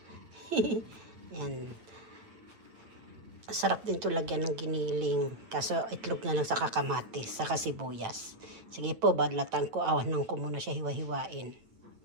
Yan. Sarap din ito lagyan ng giniling. Kaso itlog na lang sa kakamatis, sa sibuyas. Sige po, badlatan ko. Awanan ko muna siya hiwa-hiwain.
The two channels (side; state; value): left; late; 8.9 ms